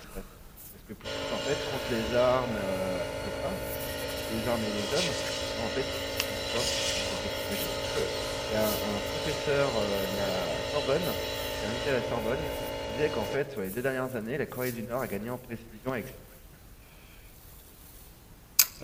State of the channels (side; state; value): both; identical; correlation 1.00